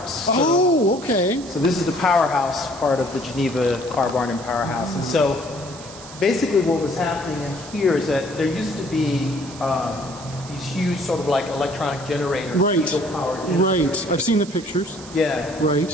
Oh, okay. So this is the Powerhouse part of the Geneva car barn and Powerhouse. And so basically what was happening in here is that there used to be these huge sort of like electronic generators. Diesel-powered generators. Right. I've seen the pictures. Yeah.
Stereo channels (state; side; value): noise; right; hiss, 16 dB below the sound